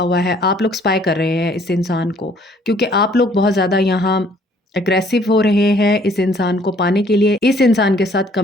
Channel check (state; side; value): normal; both; correlation 0.60